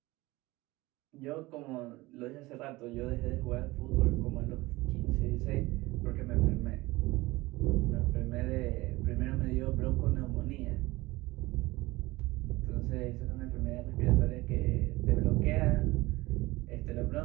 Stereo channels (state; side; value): quieter; left; 20.4 dB